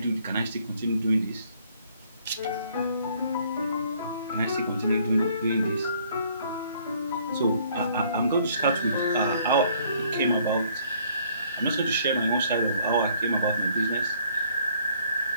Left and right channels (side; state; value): both; inverted; correlation -0.62